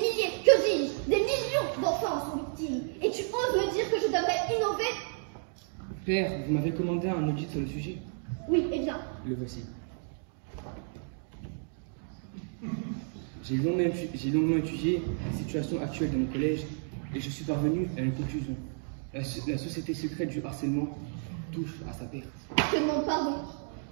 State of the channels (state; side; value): silent; left; 57 dB below the other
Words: que dis-je, des millions d'enfants en sont victimes. Et tu oses me dire que je devrais innover? Père, vous m'avez commandé un audit sur le sujet. Oui, eh bien. Le voici. J'ai longuement étudié la situation actuelle de mon collège et je suis parvenu à une conclusion. La société secrète du harcèlement touche à sa perte. Je te demande pardon.